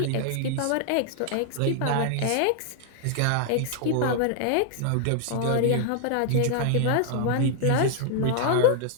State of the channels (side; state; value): both; different; correlation -0.01